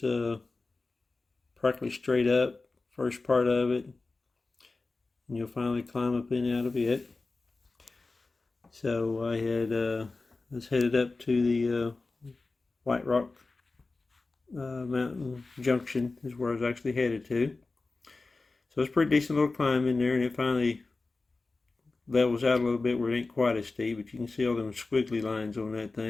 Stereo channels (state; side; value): quieter; right; 3.6 dB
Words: practically straight up, first part of it. And you'll finally climb up and out of it. So I was headed up to the White Rock Mountain Junction is where I was actually headed to. So it's a pretty decent little climb in there, and it finally levels out a little bit where it ain't quite as steep, but you can see all them squiggly lines on that